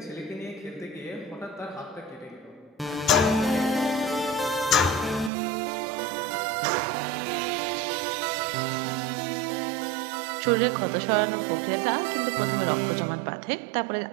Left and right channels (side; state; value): left; drops out; at 5.3 s